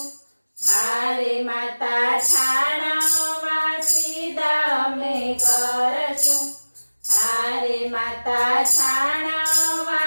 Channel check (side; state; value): both; inverted; correlation -1.00